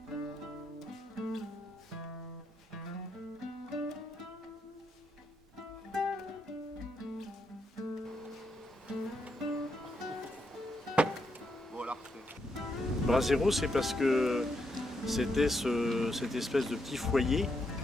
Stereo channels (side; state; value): both; normal; correlation 0.80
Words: Brasero, c'est parce que c'était cette espèce de petit foyer